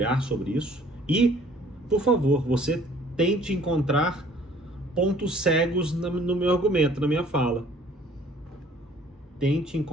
sobre isso e, por favor, você tente encontrar pontos cegos no meu argumento, na minha fala. Tente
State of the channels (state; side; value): normal; both; correlation 0.55